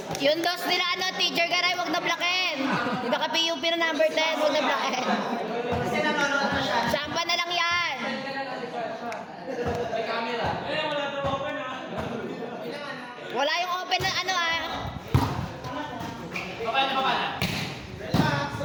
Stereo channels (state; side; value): identical; both; correlation 1.00